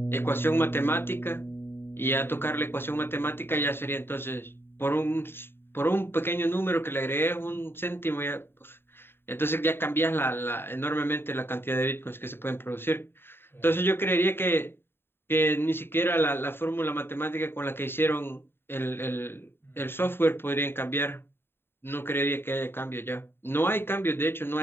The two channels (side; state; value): right; late; 0.11 ms